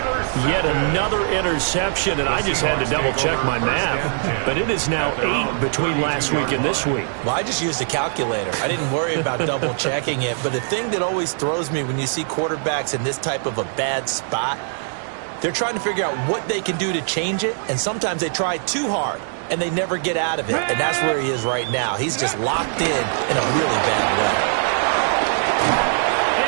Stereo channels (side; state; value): left; silent; digital silence